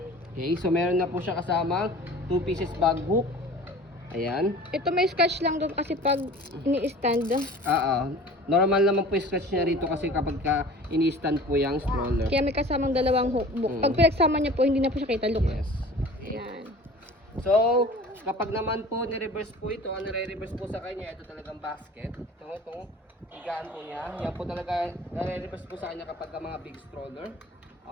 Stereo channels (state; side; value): normal; both; correlation 0.43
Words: Okay, so meron na po siya kasama 2 pieces bag hook. Ayan. Ito may scratch lang doon kasi pag ini-stand. Normal naman po yung scratch niya rito kasi kapag ini-stand po yung stroller. Kaya may kasamang dalawang hook. Pag pinagsama niya po, hindi na po siya kita. Look. Yes. Ayan. So, kapag naman po ni-reverse po ito, ang nare-reverse po sa kanya, ito talagang basket. Itong higaan po niya. Yan po talaga nare-reverse po sa kanya kapag mga big stroller.